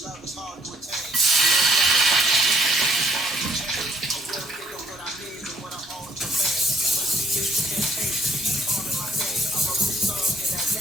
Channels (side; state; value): both; normal; correlation 0.66